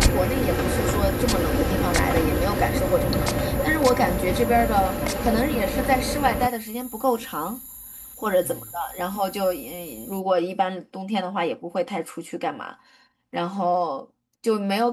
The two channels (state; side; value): identical; both; correlation 1.00